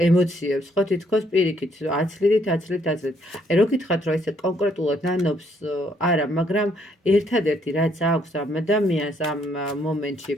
ემოციებს, ხო, თითქოს პირიქით, აცლიდით. აი, რო გითხრათ, რომ ესე კონკრეტულად ნანობს, არა, მაგრამ ერთადერთი რაც აქვს ამ ადამიანს ამ მომენტში,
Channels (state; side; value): normal; both; correlation 0.69